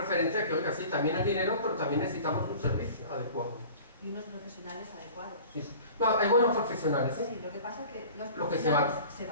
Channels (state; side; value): inverted; both; correlation -0.42